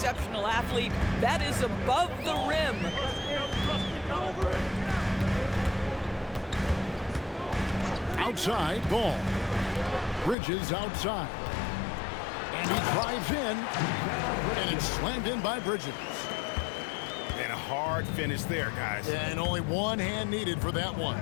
athlete. That is above the rim. Outside, ball. Bridges outside. And he drives in. And it's slammed in by Bridges. And a hard finish there, guys. And only one hand needed for that one.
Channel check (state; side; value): drops out; right; at 10.4 s